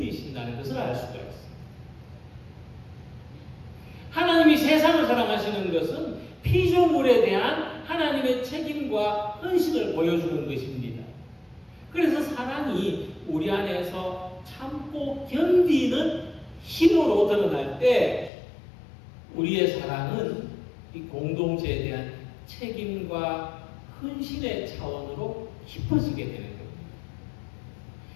것을 알 수가 있습니다. 하나님이 세상을 사랑하시는 것은 피조물에 대한 하나님의 책임과 헌신을 보여주는 것입니다. 그래서 사랑이 우리 안에서 참고 견디는 힘으로 드러날 때 우리의 사랑은 이 공동체에 대한 책임과 헌신의 차원으로 깊어지게 되는 겁니다.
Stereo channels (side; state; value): right; drops out; at 18.3 s